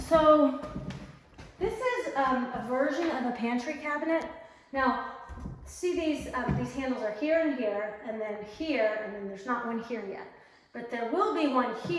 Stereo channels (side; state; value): both; identical; correlation 1.00